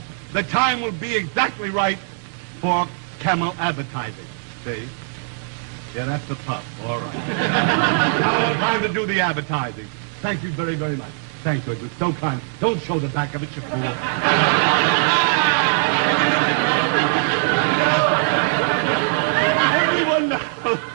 the time will be exactly right for Camel advertising. See? Yeah, that's the pup. All right. Now time to do the advertising. Thank you very, very much. Thank you. It was so kind. Don't show the back of it, you fool. Everyone knows.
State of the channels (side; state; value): left; silent; digital silence